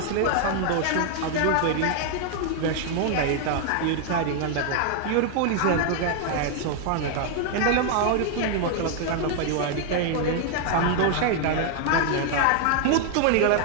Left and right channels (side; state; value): both; different; correlation 0.00